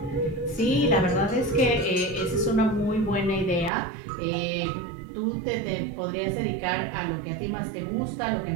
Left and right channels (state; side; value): drops out; left; at 3.7 s